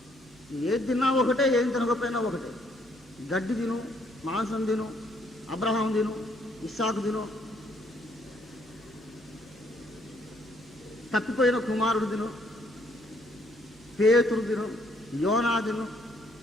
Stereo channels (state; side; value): normal; both; correlation 0.68